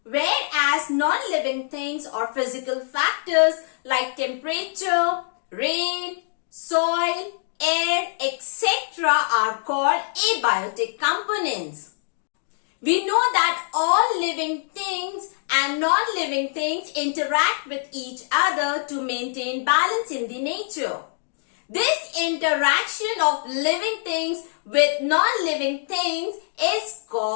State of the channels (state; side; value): silent; right; digital silence